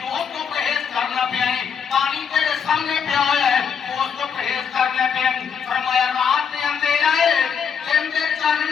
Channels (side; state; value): right; quieter; 6.9 dB